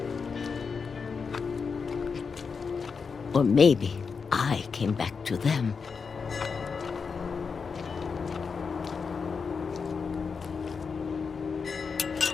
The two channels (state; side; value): quieter; right; 5.4 dB